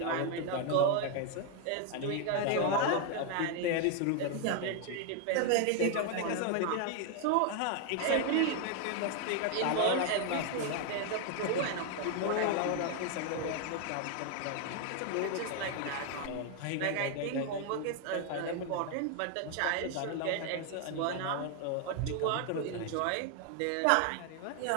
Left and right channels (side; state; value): both; different; correlation 0.00